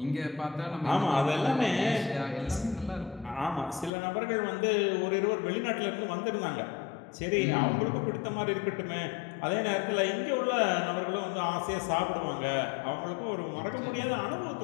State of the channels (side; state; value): right; drops out; at 3.9 s